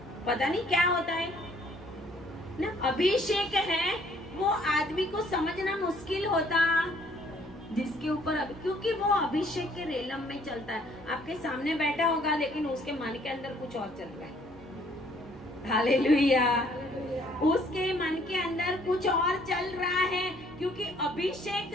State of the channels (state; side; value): noise; right; hum, 23 dB below the sound